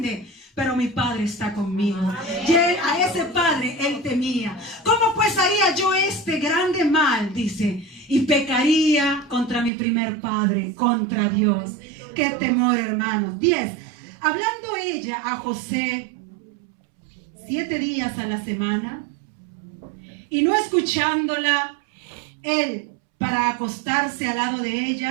pero mi padre está conmigo. Y él, a ese padre él temía. ¿Cómo pues haría yo este grande mal? Dice, y pecaría contra mi primer padre, contra Dios. Qué temor, hermanos. 10. Hablando ella a José 7 días a la semana, y no escuchándola él para acostarse al lado de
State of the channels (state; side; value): drops out; left; at 9.7 s